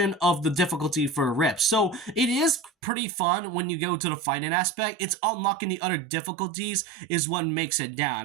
of the difficulty for RIP. So it is pretty fun when you go to the fighting aspect. It's unlocking the other difficulties is what makes it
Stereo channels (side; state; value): left; drops out; at 2.7 s